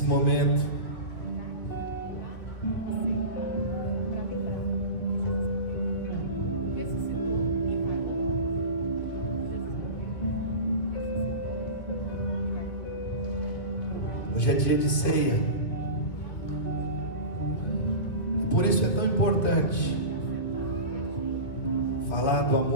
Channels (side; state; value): right; late; 1.9 ms